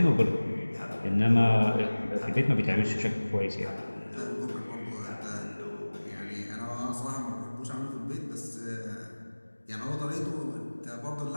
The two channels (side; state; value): both; inverted; correlation -1.00